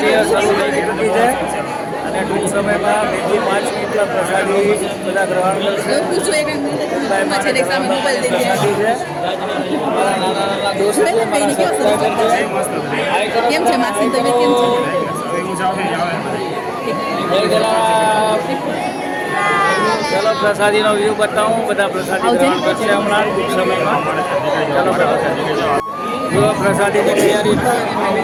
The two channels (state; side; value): identical; both; correlation 1.00